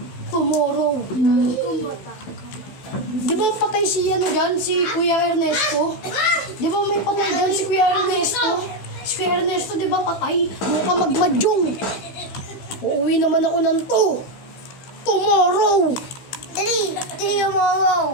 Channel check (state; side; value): late; right; 15 ms